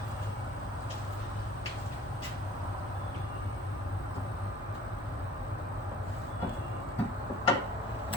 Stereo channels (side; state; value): both; normal; correlation 0.49